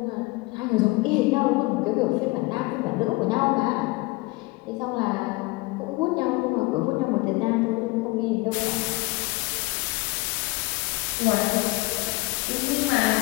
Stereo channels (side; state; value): right; quieter; 24.2 dB